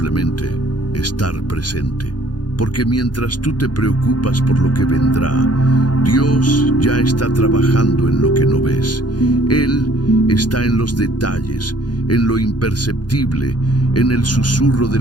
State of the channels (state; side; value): late; right; 0.70 ms